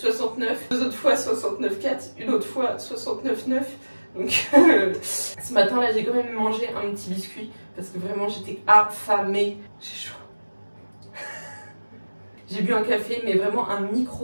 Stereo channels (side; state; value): both; inverted; correlation -1.00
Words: deux autres fois 69,4, une autre fois 69,9. Donc ce matin là, j'ai quand même mangé un petit biscuit parce que vraiment j'étais affamée. J'ai chaud. J'ai bu un café, mais vraiment un